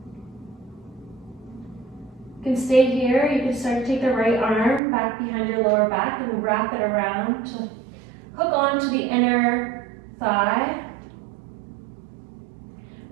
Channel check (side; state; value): left; drops out; at 4.8 s